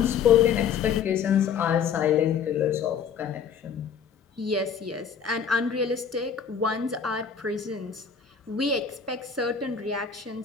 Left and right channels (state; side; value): quieter; right; 7.0 dB